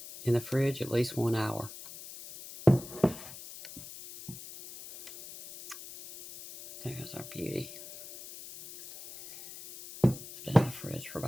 In the fridge at least 1 hour. There's our beauty. It's been in the fridge for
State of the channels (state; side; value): noise; left; hiss, 14 dB below the sound